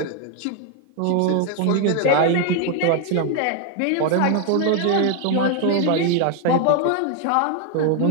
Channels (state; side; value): different; both; correlation 0.01